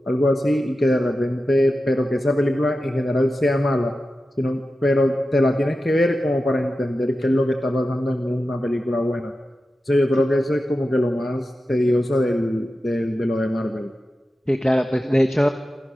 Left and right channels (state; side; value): normal; both; correlation 0.92